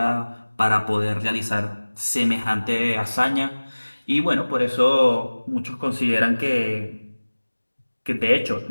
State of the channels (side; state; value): both; inverted; correlation -1.00